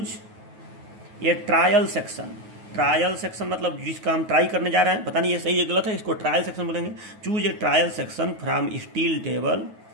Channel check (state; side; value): late; left; 9.3 ms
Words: ये ट्रायल सेक्शन। ट्रायल सेक्शन मतलब जिसका हम ट्राई करने जा रहे हैं, पता नहीं ये सही है गलत है, इसको ट्रायल सेक्शन बोलेंगे। Choose a trial section from steel